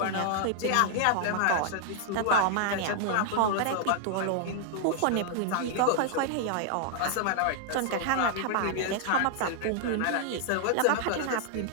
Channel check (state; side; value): different; both; correlation -0.01